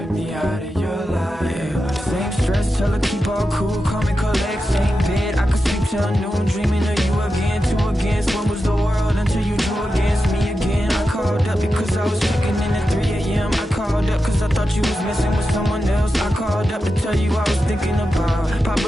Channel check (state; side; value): normal; both; correlation 0.90